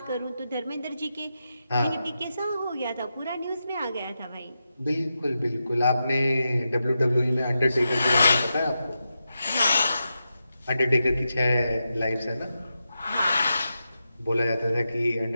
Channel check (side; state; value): both; inverted; correlation -0.88